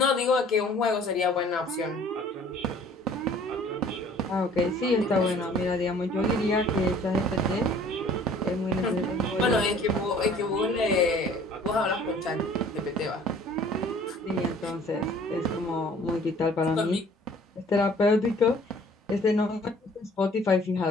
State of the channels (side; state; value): both; normal; correlation 0.52